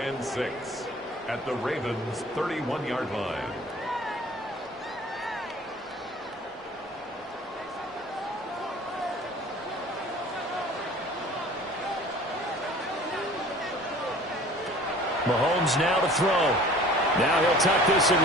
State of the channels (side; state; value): both; normal; correlation 0.46